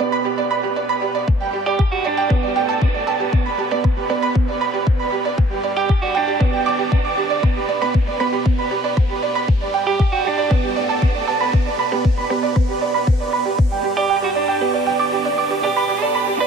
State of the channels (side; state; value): both; normal; correlation 0.58